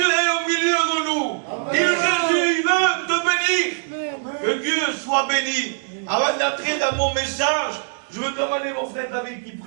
est au milieu de nous. Et Jésus, il veut te bénir. Que Dieu soit béni. Avant d'entrer dans mon message, je veux demander mon frère David qui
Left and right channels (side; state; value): left; silent; digital silence